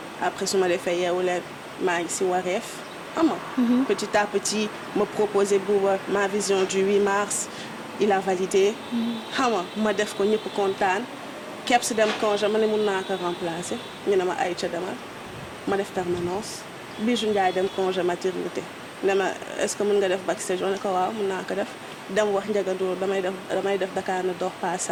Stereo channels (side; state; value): both; identical; correlation 1.00